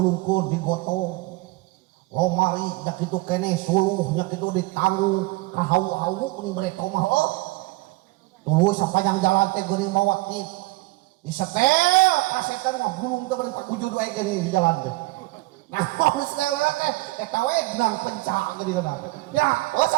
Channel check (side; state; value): left; quieter; 22.2 dB